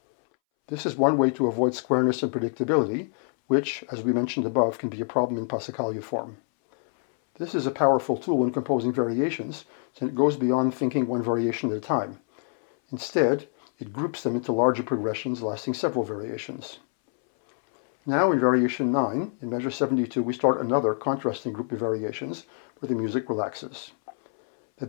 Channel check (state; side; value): silent; right; 61 dB below the other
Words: This is one way to avoid squareness and predictability, which, as we mentioned above, can be a problem in Passacaglia form. This is a powerful tool when composing variations, since it goes beyond thinking one variation at a time. Instead, it groups them into larger progressions lasting several variations. Now in variation 9, in measure 72, we start another contrasting group of variations where the music relaxes. The